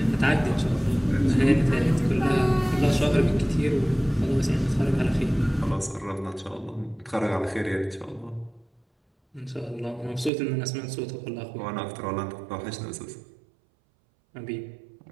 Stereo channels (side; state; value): left; drops out; at 10.3 s